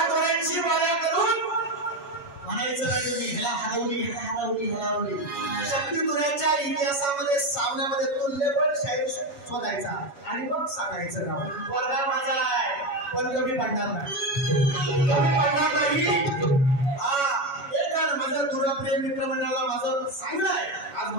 कोणाची मला करून म्हणायचं नाही तुम्ही ह्याला हरवली ह्याला हरवली हरवली. शक्तितुऱ्याच्या इतिहासामध्ये सामन्यामध्ये तुल्यबळ शाहीर शोधायचा आणि मग सांगायचं नाव. वर्गा माझा आहे पण कमी पडणार नाही, कमी पडणार नाही. हा एक गाणं माझं दुराप्रिय मित्रमंडळाला माझं सांगणं आहे, आज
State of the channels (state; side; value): late; right; 7.2 ms